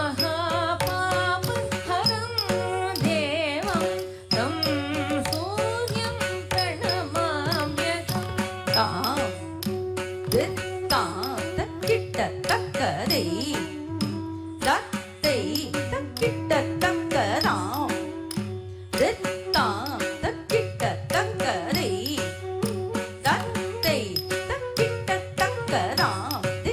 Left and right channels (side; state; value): both; identical; correlation 1.00